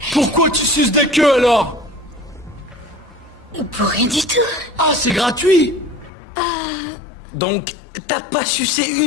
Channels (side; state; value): right; drops out; at 6.1 s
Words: Pourquoi tu suces des queues alors? Pour rien du tout. Ah, c'est gratuit! Donc, t'as pas sucé